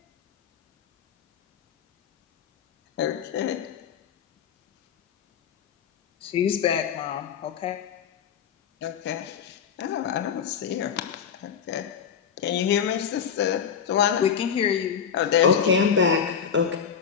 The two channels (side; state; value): right; quieter; 7.5 dB